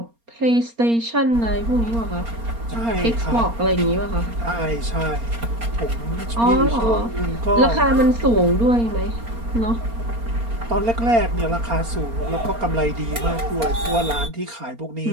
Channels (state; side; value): late; left; 4.3 ms